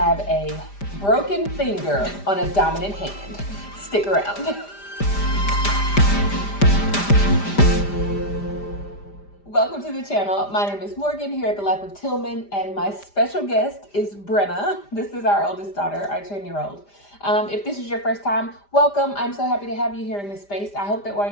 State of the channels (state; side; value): late; right; 5.0 ms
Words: a broken finger on a dominant hand. Stick around. Welcome to the channel. My name is Morgan here at The Life of Tillman, and my special guest is Brenna. This is our oldest daughter, our 10-year-old. If this is your first time, welcome. I'm so happy to have you here in this space. I hope that while